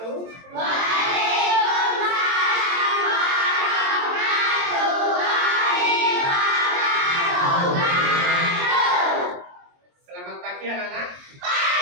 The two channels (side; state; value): left; late; 22 ms